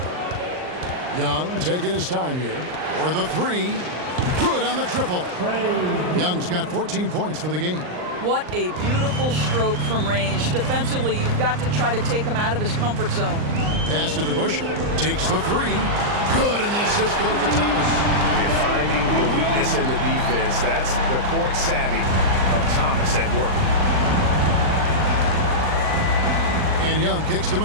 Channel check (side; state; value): left; late; 39 ms